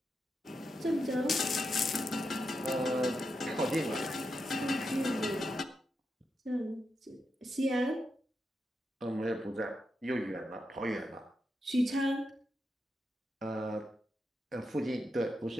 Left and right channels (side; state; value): both; normal; correlation 0.86